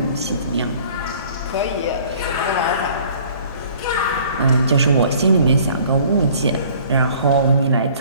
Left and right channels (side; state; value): both; inverted; correlation -0.53